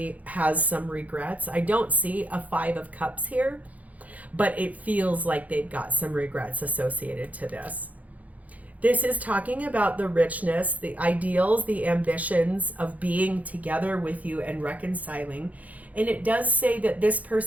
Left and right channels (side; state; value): left; late; 0.074 ms